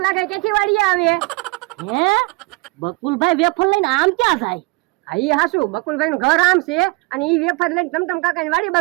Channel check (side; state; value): left; quieter; 26.5 dB